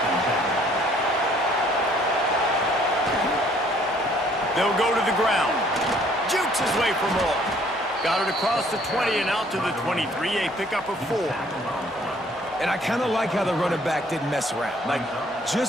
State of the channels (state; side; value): normal; both; correlation 0.60